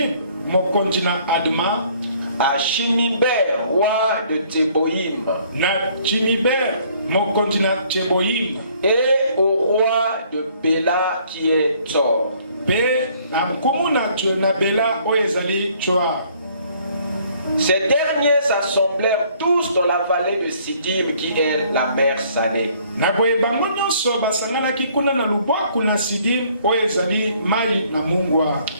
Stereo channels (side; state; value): both; inverted; correlation -0.61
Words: mokonzi na Adma, à Shiniber, roi de Teboïm, na Chiniber mokonzi na Teboïm, et au roi de Béla qui est Tzor. Pe na mkumuna na Béla oyezali Tsoar. Ces derniers s'assemblèrent tous dans la vallée de Sidim qui est la mer Salée. Na boye bango nyonso basanganaki kuna na lubwaku na Sidim oyezali mai na mungwa.